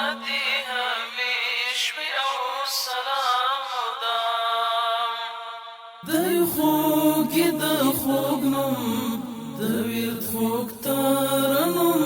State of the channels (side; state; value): both; identical; correlation 1.00